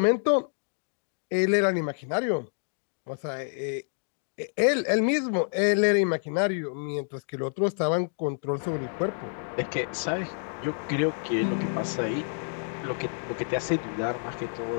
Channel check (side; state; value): right; silent; digital silence